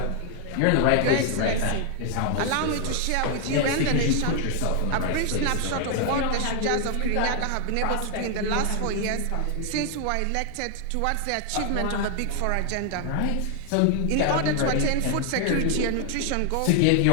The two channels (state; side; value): different; both; correlation 0.00